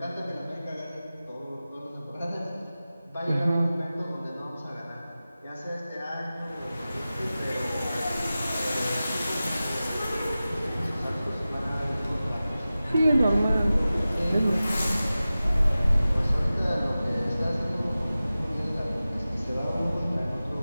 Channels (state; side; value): inverted; both; correlation -0.96